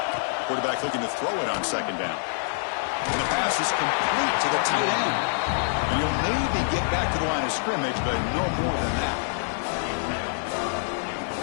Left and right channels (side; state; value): right; silent; digital silence